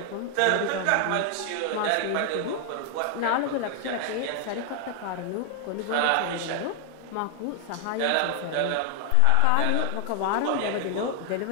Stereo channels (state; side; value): different; both; correlation 0.00